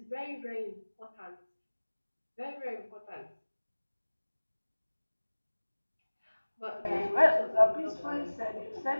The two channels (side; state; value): both; inverted; correlation -1.00